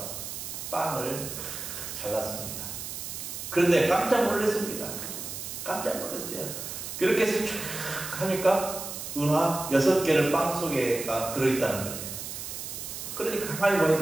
빵을 잘랐습니다. 그런데 깜짝 놀랐습니다. 깜짝 놀랐어요. 그렇게 해서 쭉 하니까 은화 6개를 빵 속에가 들어있다는 거예요. 그러니까 가만히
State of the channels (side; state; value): right; noise; hiss, 7 dB below the sound